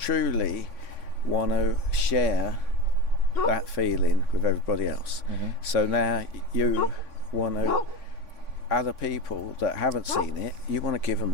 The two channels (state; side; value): late; right; 3.5 ms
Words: want to share that feeling with everybody else. So now you want to, other people that haven't seen it, you want to give them